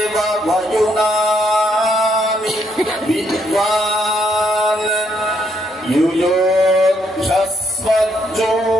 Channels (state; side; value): normal; both; correlation 0.73